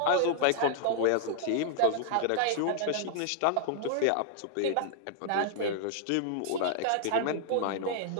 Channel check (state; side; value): different; both; correlation -0.01